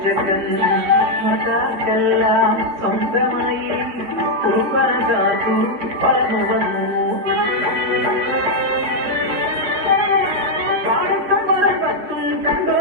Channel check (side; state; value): left; late; 4.4 ms